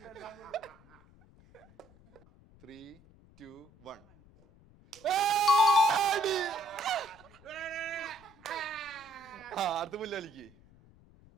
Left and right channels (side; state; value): left; noise; rumble, 26 dB below the sound